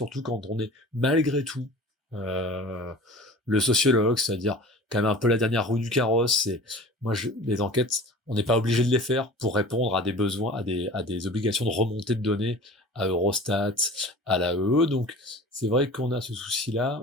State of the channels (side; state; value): both; normal; correlation 0.41